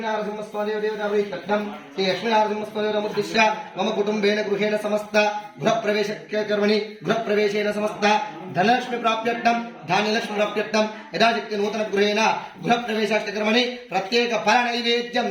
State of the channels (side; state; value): both; identical; correlation 1.00